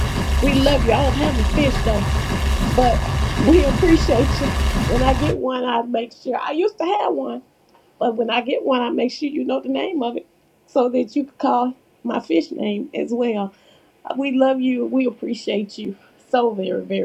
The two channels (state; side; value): identical; both; correlation 1.00